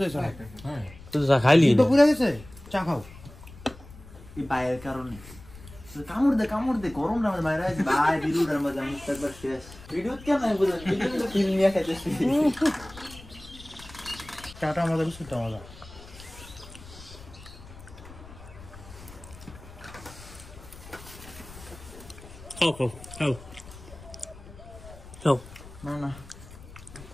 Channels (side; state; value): left; noise; rumble, 18 dB below the sound